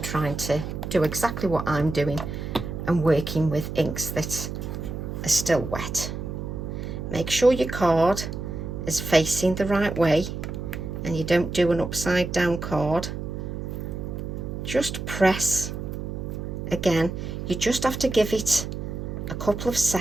trying to do exactly what I'm doing and working with inks that are still wet. Make sure your card is facing the right way and you don't do an upside down card, just press again. You just have to give it a couple of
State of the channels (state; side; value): noise; right; hum, 6 dB below the sound